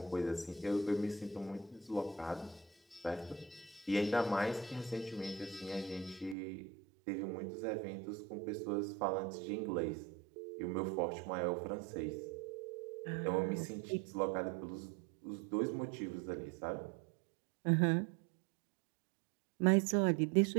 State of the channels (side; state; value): left; drops out; at 6.4 s